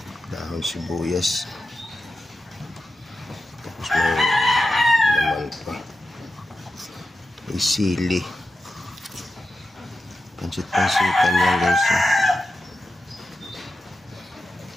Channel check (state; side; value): normal; both; correlation 0.90